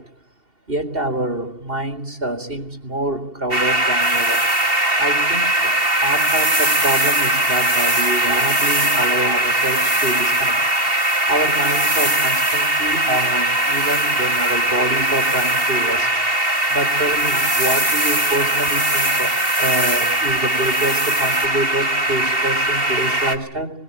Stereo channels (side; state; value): left; late; 2.7 ms